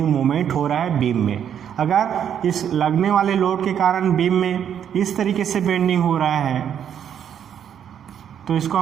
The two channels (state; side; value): quieter; left; 8.9 dB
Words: मोमेंट हो रहा है बीम में। अगर इस लगने वाले लोड के कारण बीम में इस तरीके से बेंडिंग हो रहा है तो इसको